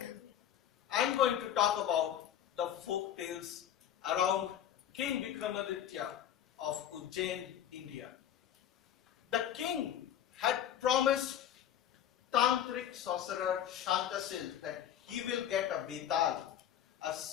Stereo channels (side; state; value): right; quieter; 10.3 dB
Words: I'm going to talk about the folk tales around King Vikramaditya of Ujjain, India. The king had promised tantric sorcerer Shantasil that he will get a Betal, a